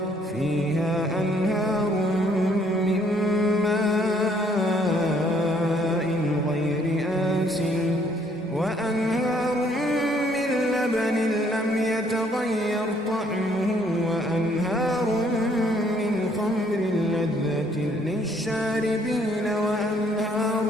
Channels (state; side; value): normal; both; correlation 0.65